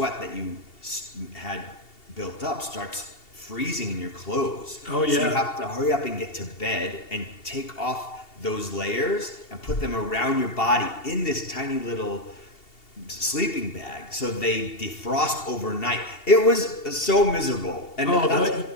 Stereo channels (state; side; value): late; right; 2.7 ms